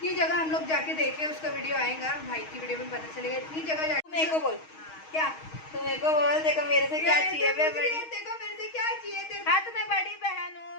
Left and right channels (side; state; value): right; late; 6.3 ms